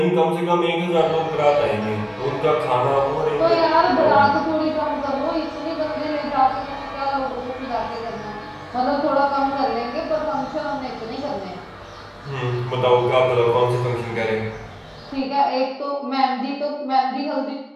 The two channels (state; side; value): identical; both; correlation 1.00